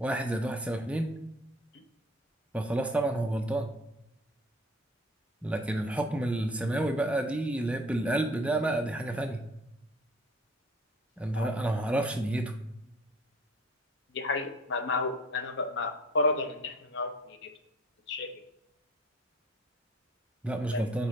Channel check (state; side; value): normal; both; correlation 0.50